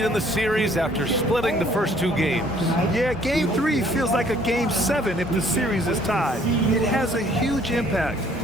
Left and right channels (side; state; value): both; normal; correlation 0.60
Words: in the series after splitting the first 2 games. Yeah, Game 3 feels like a Game 7 if the series is tied. It has a huge impact.